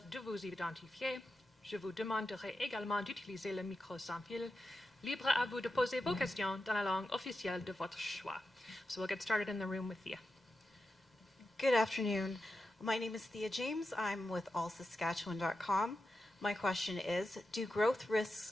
de vous identifier. Je vous demanderai également d'utiliser le micro sans fil. Libre à vous de poser vos questions dans la langue officielle de votre choix. So we'll get started in the room with Thea. Good afternoon. My name is Thea James. I'm with allsaskatchewan.com. My question is, do growth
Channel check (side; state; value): both; normal; correlation 0.90